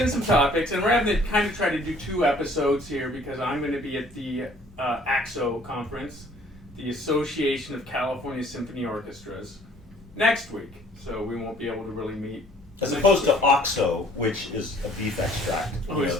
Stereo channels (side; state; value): both; normal; correlation 0.57